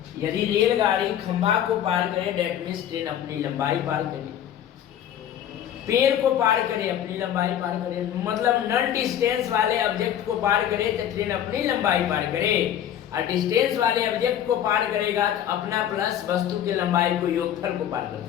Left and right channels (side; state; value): right; quieter; 10.4 dB